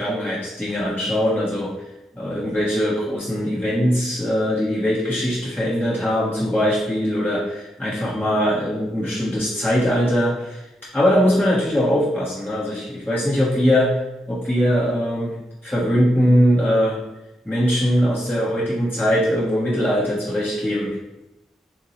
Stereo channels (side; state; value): both; normal; correlation 0.82